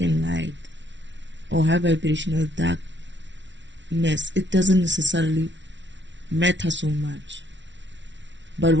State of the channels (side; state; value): left; late; 0.53 ms